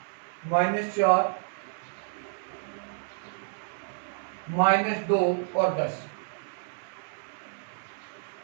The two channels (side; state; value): left; silent; 58 dB below the other